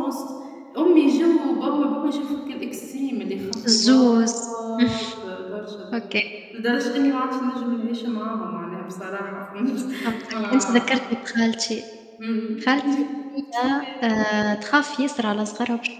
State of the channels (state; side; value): identical; both; correlation 1.00